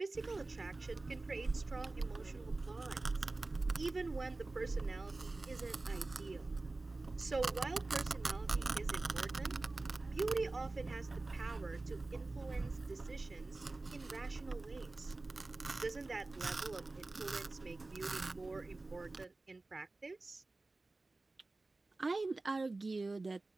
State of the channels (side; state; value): left; quieter; 3.2 dB